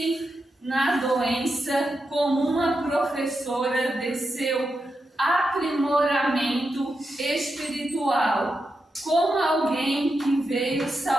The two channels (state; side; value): normal; both; correlation 0.87